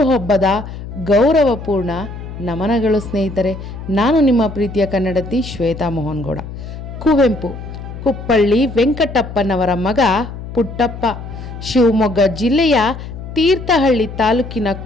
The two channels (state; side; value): noise; left; hum, 10 dB below the sound